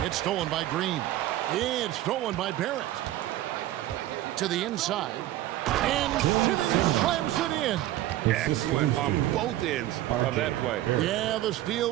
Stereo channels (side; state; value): left; quieter; 14.6 dB